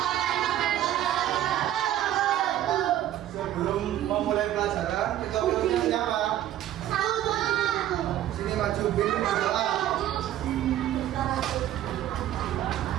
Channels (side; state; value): left; quieter; 12.5 dB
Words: Sebelum memulai pelajaran, kita pilih siapa? Sini maju, pilih berdoa.